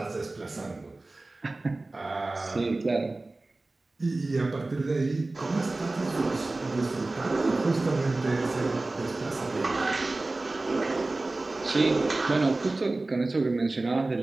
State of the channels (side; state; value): left; quieter; 3.1 dB